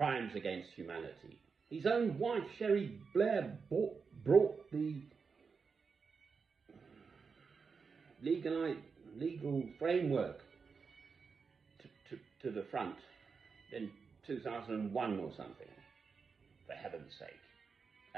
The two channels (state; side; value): quieter; left; 5.3 dB